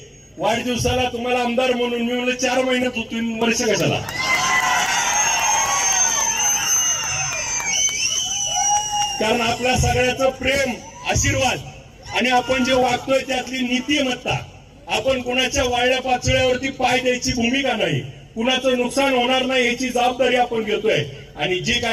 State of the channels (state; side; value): identical; both; correlation 1.00